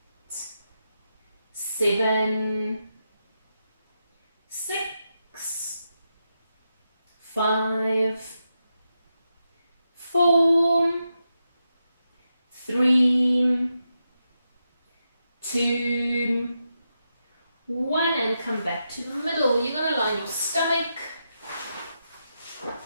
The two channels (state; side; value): inverted; both; correlation -0.86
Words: 7, 6, 5, 4, 3, 2, 1, and come back to the middle. You're going to line your stomach.